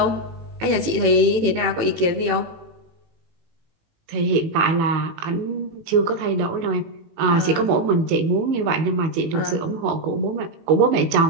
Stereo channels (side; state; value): left; late; 18 ms